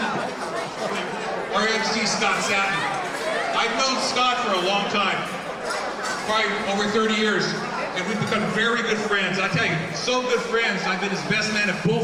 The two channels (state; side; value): identical; both; correlation 1.00